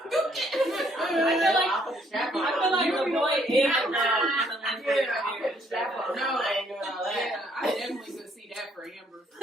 like- I'll put the strap on. I feel like the boy is Yeah, now. I'll put the strap on. No, I ain't doing all that. Yeah, I definitely could see that for Amber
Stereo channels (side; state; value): both; normal; correlation 0.67